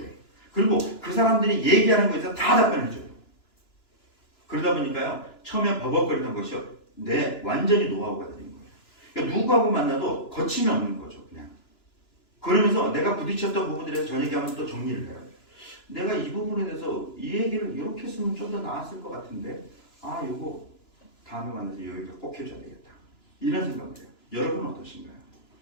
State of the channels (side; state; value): right; late; 2.9 ms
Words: 그리고 그 사람들이 얘기하는 거에서 다 답변해줘요. 그러다 보니까요. 처음에 버벅거리던 것이요. 완전히 노하우가 되는 거예요. 그러니까 누구하고 만나도 거침이 없는 거죠. 그냥. 그러면서 내가 부딪혔던 부분들에 대해서 저녁에 하면 또 정리를 해요. 내가 이 부분에 대해서 이 얘기를 이렇게 했으면 좀 더 나았을 것 같은데 요거 다음에 만나서 여기가 꼭 해줘야 되겠다. 이런 생각을 해요. 여러분은 어떠신가요?